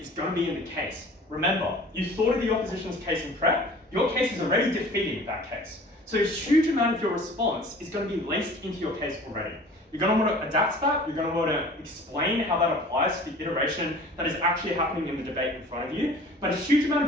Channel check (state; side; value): normal; both; correlation 0.45